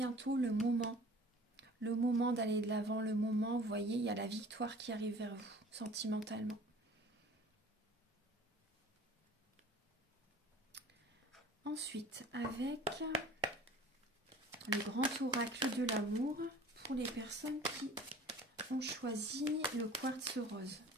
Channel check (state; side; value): normal; both; correlation 0.46